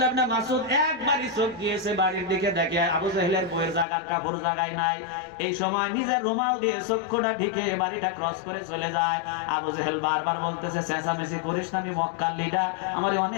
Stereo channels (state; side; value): drops out; right; at 3.9 s